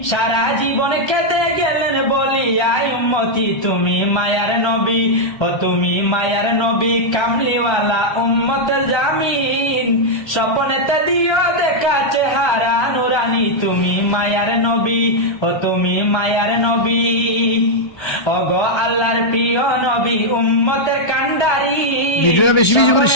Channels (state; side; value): late; right; 1.3 ms